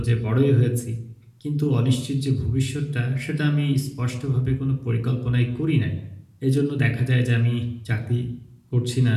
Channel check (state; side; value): identical; both; correlation 1.00